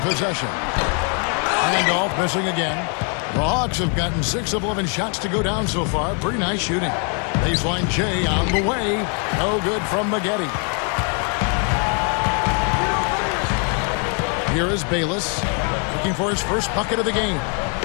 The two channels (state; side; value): quieter; right; 38.6 dB